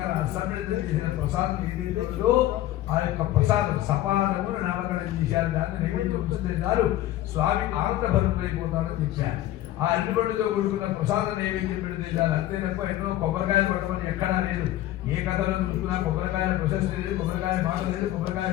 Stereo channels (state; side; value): quieter; right; 14.2 dB